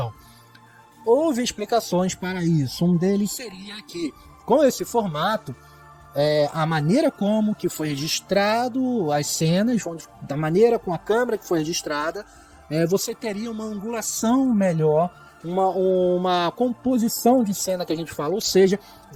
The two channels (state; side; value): identical; both; correlation 1.00